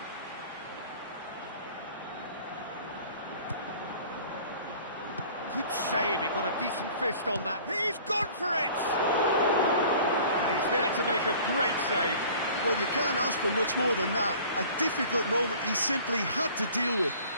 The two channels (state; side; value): inverted; both; correlation -0.48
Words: Good save, he got a decent fist on that. He's gone for it! And he's there to make a great save. Well, you can't ask for much more than that. A difficult moment he simply had to deal with.